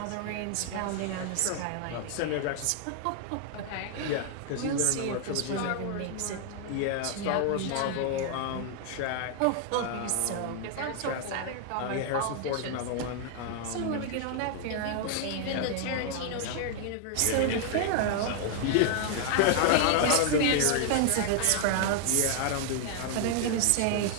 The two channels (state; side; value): different; both; correlation 0.00